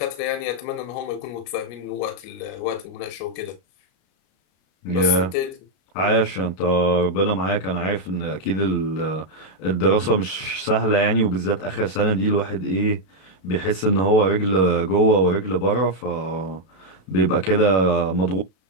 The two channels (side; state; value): right; late; 32 ms